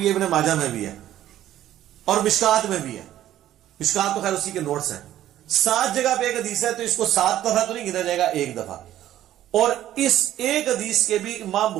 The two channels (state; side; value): quieter; left; 12.7 dB